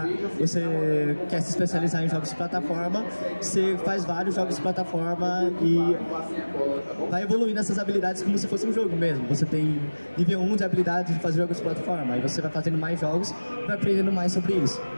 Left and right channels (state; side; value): inverted; both; correlation -1.00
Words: quer se especializar em jogos de plataforma, você faz vários jogos de plataforma e vai evoluindo essas habilidades como se fosse um jogo mesmo. Você tem nível 1 de habilidade de fazer jogos de plataforma, aí você vai fazendo mais jogos e vai aprendendo mais sobre isso.